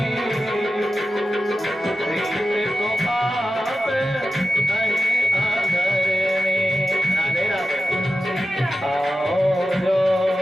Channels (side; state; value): both; normal; correlation 0.92